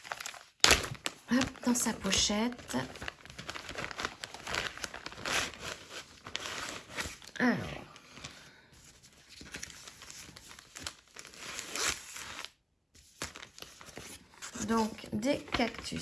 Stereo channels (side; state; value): both; identical; correlation 1.00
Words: Hop, dans sa pochette. Alors. Donc, des